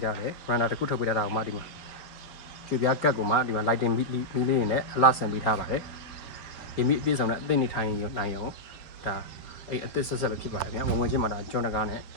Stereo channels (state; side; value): late; right; 4.6 ms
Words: ားတယ်ဝရန်ဒါတစ်ခုထုတ်ပေးထားတာကိုမှဒီမှာကျွေပြားကတ်ကိုမှဒီမှာ lighting မီးလေးတွေနဲ့အလှဆင်ပေးထားပါတယ်ဒီမီးအပြည့်စုံနဲ့အသစ်နေထိုင်နိုင်အောင်ဒါအိမ်အသစ်ဆက်ဆက်ပဲဖြစ်ပါတယ်ဗျာဝင်ချင်းမှာဒါကျွန်းတကားနဲ့ဒ